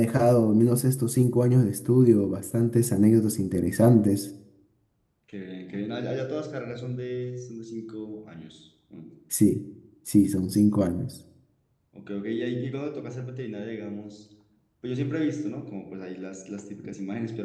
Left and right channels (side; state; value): both; identical; correlation 1.00